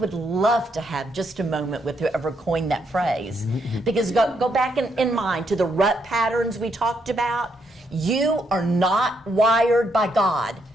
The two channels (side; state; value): both; normal; correlation 0.76